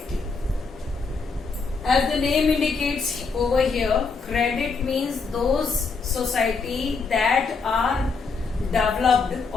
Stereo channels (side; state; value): right; quieter; 4.6 dB